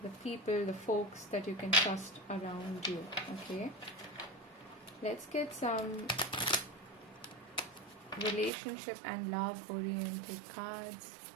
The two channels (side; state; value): left; drops out; at 8.5 s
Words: the people, the folks that you can trust around you. Okay, let's get some relationship and love oriented cards.